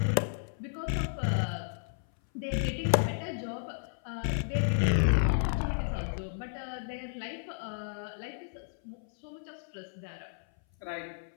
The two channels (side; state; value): right; silent; 56 dB below the other